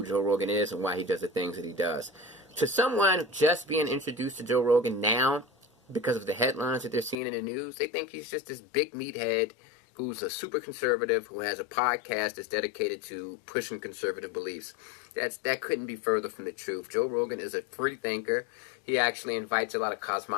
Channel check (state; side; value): drops out; right; at 7.2 s